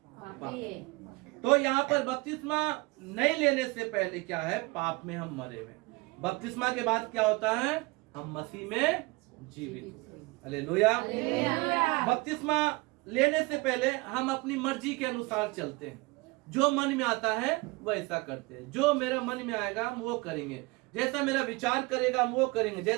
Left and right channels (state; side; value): quieter; left; 24.6 dB